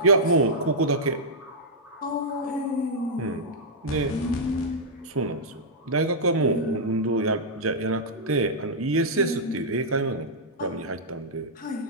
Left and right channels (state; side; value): normal; both; correlation -0.08